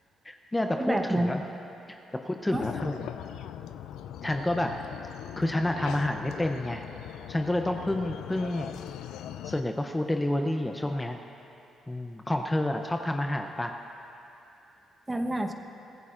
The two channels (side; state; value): both; normal; correlation 0.94